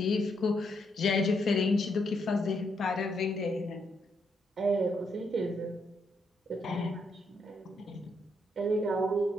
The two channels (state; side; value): normal; both; correlation 0.77